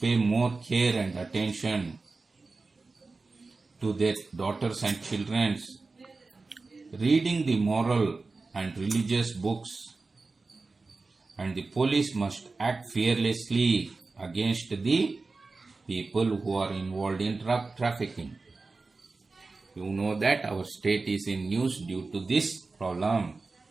more care and attention to their daughters and children, reading the moral and religious books, and the police must act fearlessly against the people who are involved in drug trafficking. You know that our state is in news due to this problem.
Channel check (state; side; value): quieter; left; 3.8 dB